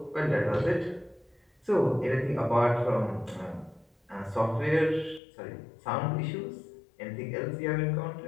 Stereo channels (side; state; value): right; drops out; at 5.2 s